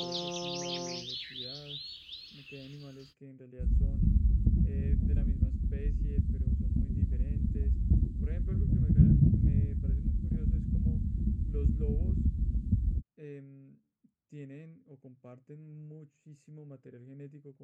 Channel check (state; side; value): identical; both; correlation 1.00